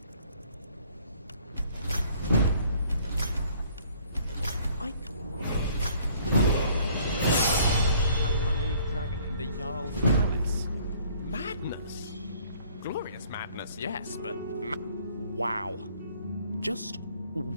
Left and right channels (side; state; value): both; inverted; correlation -0.58